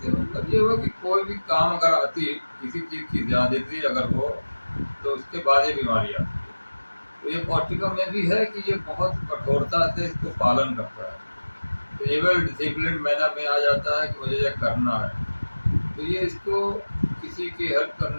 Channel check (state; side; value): inverted; both; correlation -1.00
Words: मतलब ये हुआ कि कोई भी काम अगर आती, किसी चीज़ की ज़्यादती अगर हो, तो उसके बाद ये बीमारी आती है। तो ये पौष्टिकम में भी है कि ये बहुत कठोरता से इसको पालन करता है, तो ये वेल डिसिप्लिन मैनर में आ जाता है कि मुझे ये करना है। तो ये इसको किसी की हेल्प